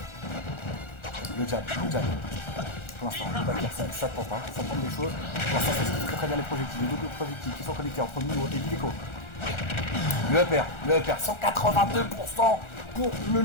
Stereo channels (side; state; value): right; late; 1.4 ms